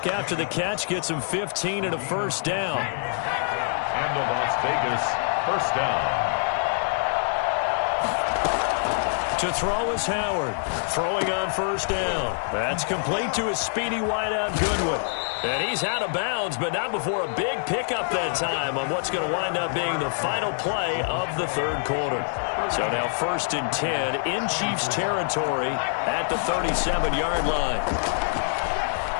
after the catch. Gets him 15 and a first down. And the Las Vegas first down. To throw is Howard. Throwing on first down. That's complete to his speedy wideout Goodwin. And he's out of bounds, but not before a big pickup that time on what's going to wind up being the final play of the 3rd quarter. So now 1st and 10 in Chiefs territory at the 37-yard line.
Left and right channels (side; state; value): right; silent; digital silence